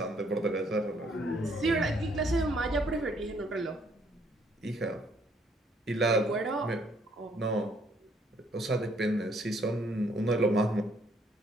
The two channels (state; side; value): normal; both; correlation 0.66